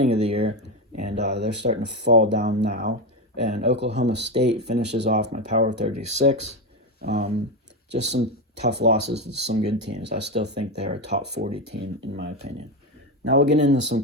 of the year, and they're starting to fall down now. And Oklahoma State finishes off my Power 36. Just some tough losses to some good teams. I still think they're a top 40 team, in my opinion. Now we'll get into some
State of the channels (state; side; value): normal; both; correlation 0.13